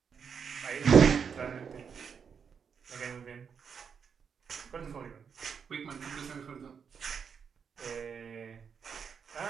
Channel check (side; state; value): left; quieter; 6.6 dB